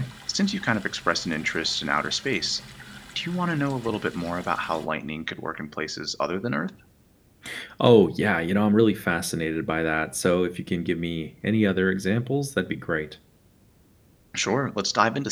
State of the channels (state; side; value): identical; both; correlation 1.00